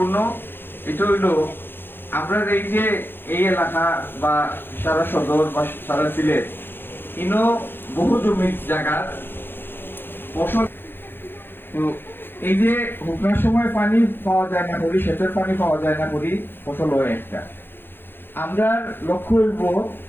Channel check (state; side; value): late; right; 0.10 ms